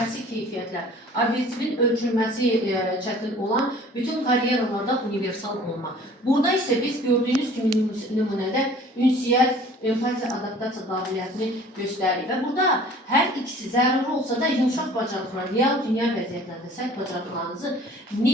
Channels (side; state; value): both; normal; correlation 0.49